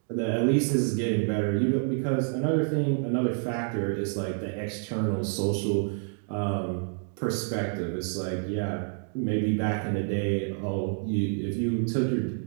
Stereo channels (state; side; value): silent; left; 59 dB below the other